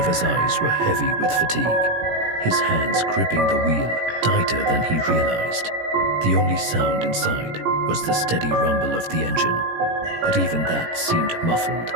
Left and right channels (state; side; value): late; left; 17 ms